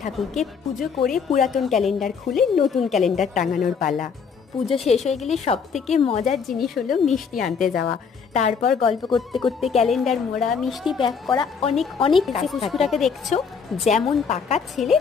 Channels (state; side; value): quieter; right; 6.1 dB